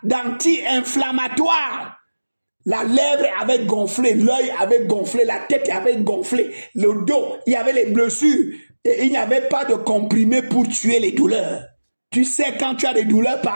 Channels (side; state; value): both; inverted; correlation -1.00